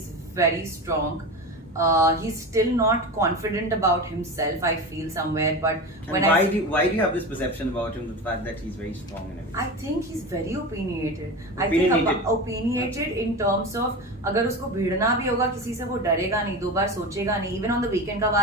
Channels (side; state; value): both; normal; correlation 0.26